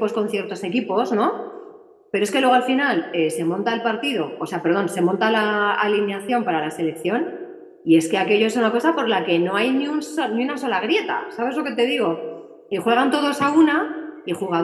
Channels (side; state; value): both; identical; correlation 1.00